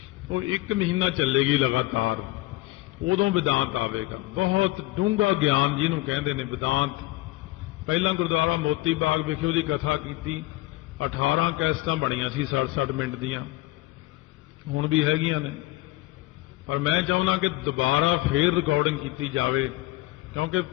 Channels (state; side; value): quieter; right; 18.9 dB